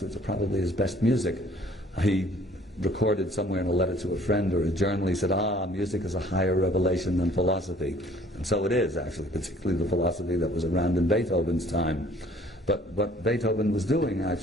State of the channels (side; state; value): both; normal; correlation 0.56